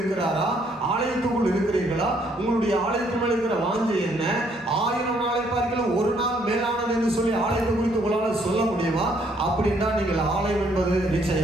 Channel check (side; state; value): both; normal; correlation 0.68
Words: ஆலயத்துக்குள் இருக்கிறீர்களா? உங்களுடைய ஆலயத்தின் மேல் இருக்கிற வாஞ்சை என்ன? 1000 நாளை பார்க்கலாம் ஒரு நாள் மேலானது என்று சொல்லி ஆலயத்தை குறித்து உங்களால் சொல்ல முடியுமா? அப்படின்னா நீங்கள் ஆலயம் என்பது